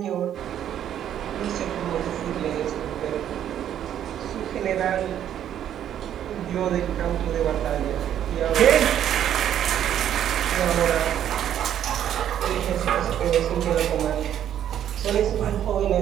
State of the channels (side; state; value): left; quieter; 10.4 dB